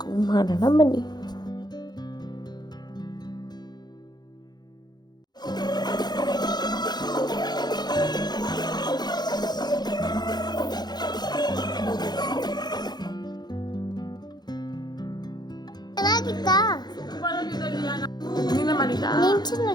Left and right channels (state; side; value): late; right; 0.20 ms